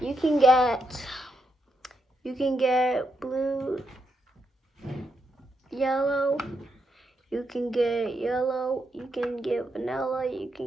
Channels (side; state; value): both; normal; correlation 0.81